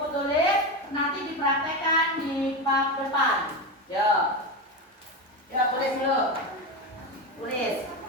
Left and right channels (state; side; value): normal; both; correlation 0.17